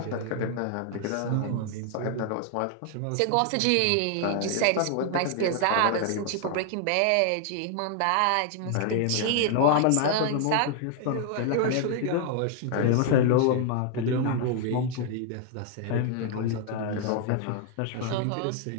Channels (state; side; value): different; both; correlation 0.00